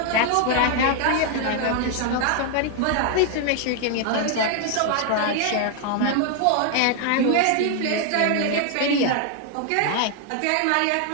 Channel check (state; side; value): different; both; correlation 0.00